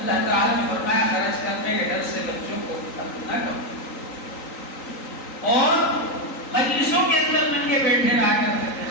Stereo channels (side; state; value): right; late; 3.9 ms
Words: تعالیٰ نے فرمایا خرچ کرنے کے ڈر سے بچوں کو قتل نہ کرو۔ اور مجلسوں کے اندر ننگے بیٹھے رہا کرتے تھے،